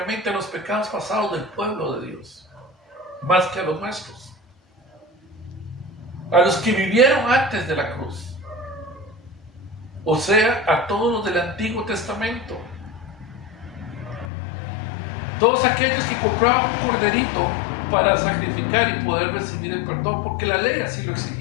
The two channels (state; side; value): drops out; right; at 14.3 s